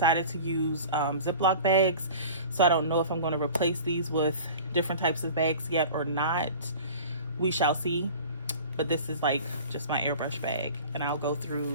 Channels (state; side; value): inverted; both; correlation -0.40